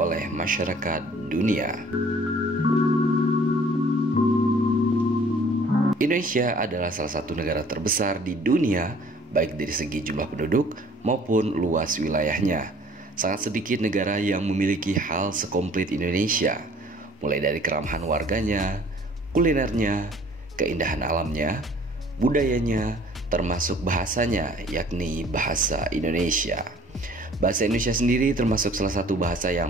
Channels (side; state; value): both; normal; correlation 0.54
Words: masyarakat dunia. Indonesia adalah salah satu negara terbesar di dunia, baik dari segi jumlah penduduk maupun luas wilayahnya. Sangat sedikit negara yang memiliki hal sekomplit Indonesia, mulai dari keramahan warganya, kulinernya, keindahan alamnya, budayanya, termasuk bahasanya, yakni bahasa Indonesia. Bahasa Indonesia sendiri termasuk salah satu bahasa